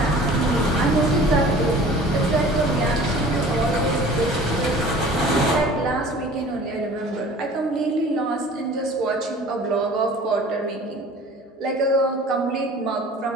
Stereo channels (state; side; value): normal; both; correlation 0.45